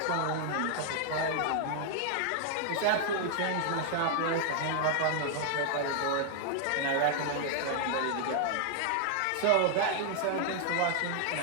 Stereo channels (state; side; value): different; both; correlation 0.00